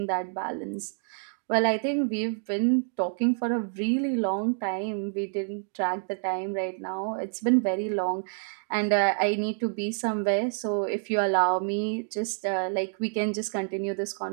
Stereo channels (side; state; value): left; silent; digital silence